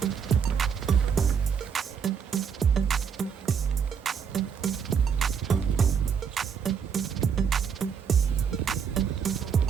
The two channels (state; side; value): quieter; left; 6.9 dB